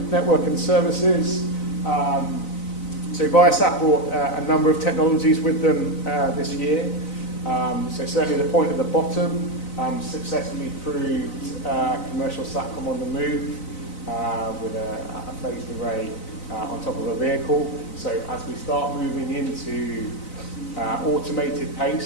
Network and Services. So Viasat brought a number of technologies with them this year. So certainly the point at the bottom successfully proved commercial SATCOM on the move with a phased array on top of a vehicle. So as we start moving into automated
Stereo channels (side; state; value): right; late; 4.0 ms